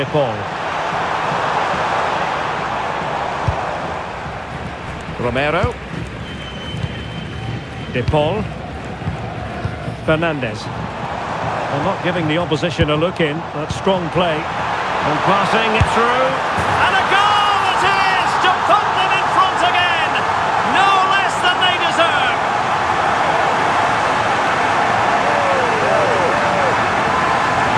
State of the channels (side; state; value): both; identical; correlation 1.00